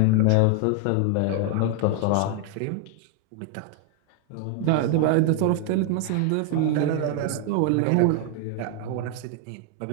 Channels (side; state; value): both; different; correlation 0.01